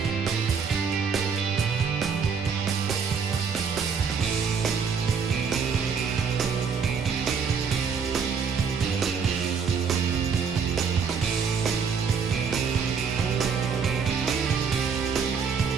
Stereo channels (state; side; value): quieter; left; 5.9 dB